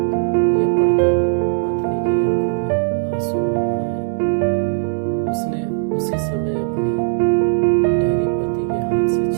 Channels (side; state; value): left; silent; 67 dB below the other